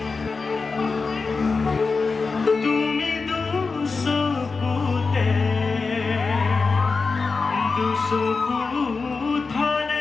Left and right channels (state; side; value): quieter; right; 4.4 dB